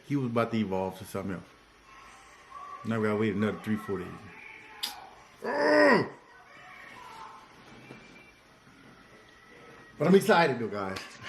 he was about to evolve to something else. Now we gotta wait another 3-4 days. Ugh! But I'm excited though, guys.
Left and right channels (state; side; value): identical; both; correlation 1.00